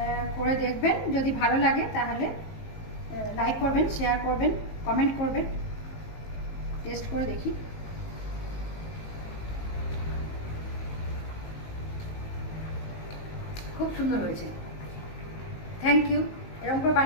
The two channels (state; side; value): late; right; 19 ms